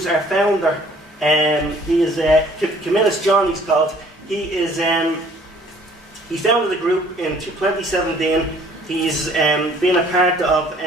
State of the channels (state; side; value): normal; both; correlation 0.56